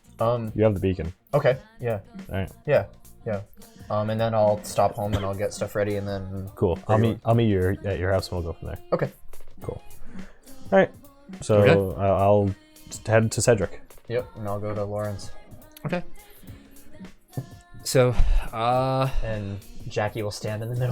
You have the beacon. Okay. Yeah. All right. Yeah. And then I'll stop home and I'll get stuff ready and then. Cool. I'll meet you at your house and we'll go from there. Okay. Cool. All right. So Okay. I'll head to Cedric. Yep. And I'll go to Lauren's. Okay. So, And Jackie will stand in the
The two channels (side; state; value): both; identical; correlation 1.00